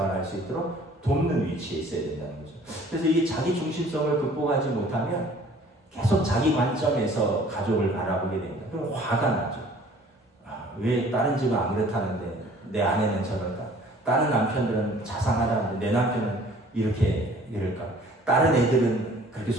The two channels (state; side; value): normal; both; correlation 0.53